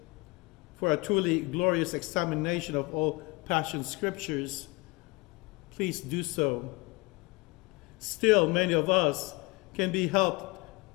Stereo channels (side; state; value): right; quieter; 25.5 dB